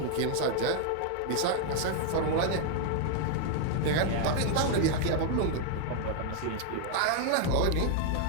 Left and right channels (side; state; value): both; different; correlation 0.00